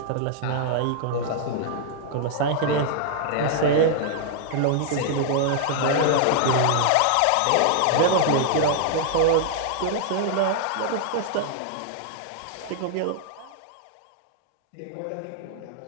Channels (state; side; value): different; both; correlation -0.01